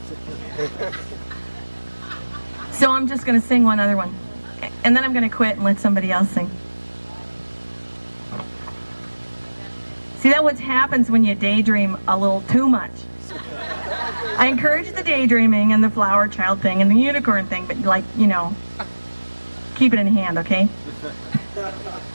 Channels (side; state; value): both; inverted; correlation -1.00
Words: So I'm just going to sing one other one. And then I'm going to quit and let somebody else sing. See, that's what happens when you daydream a little too much. I encourage the daydreaming and the flower child thing and the unicorn thing, but like, you know, keep it in hand, okay?